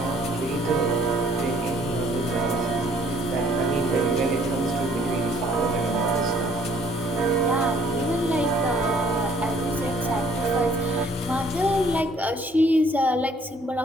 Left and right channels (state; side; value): normal; both; correlation 0.60